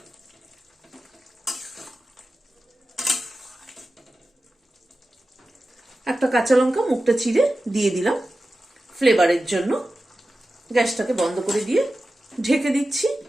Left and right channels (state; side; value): normal; both; correlation 0.94